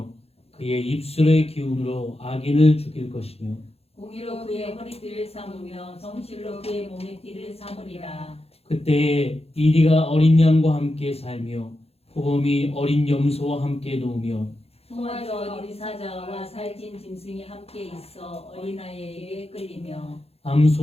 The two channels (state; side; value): late; right; 0.29 ms